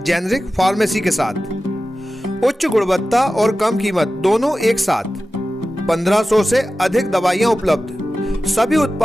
जेनेरिक फार्मेसी के साथ उच्च गुणवत्ता और कम कीमत दोनों एक साथ। 1500 से अधिक दवाइयां उपलब्ध, सभी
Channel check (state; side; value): normal; both; correlation 0.94